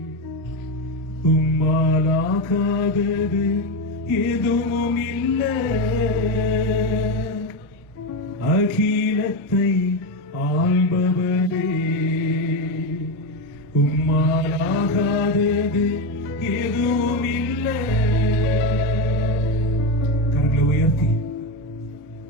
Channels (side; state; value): both; normal; correlation 0.14